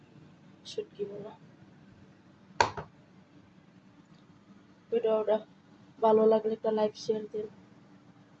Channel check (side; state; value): both; identical; correlation 1.00